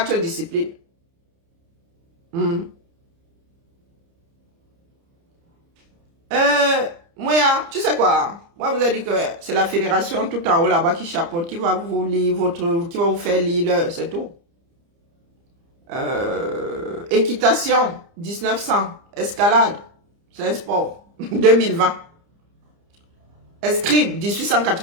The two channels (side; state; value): left; late; 30 ms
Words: disciplines. Moi, tu sais quoi? Moi, vous avez dit que c'est la fédération tout en haut là-bas qui chapeaute, qui va vous lire qui va vous faire lire, c'est tout. Équitation, 1900. Escalade, c'est un sport, 2020. Escrime,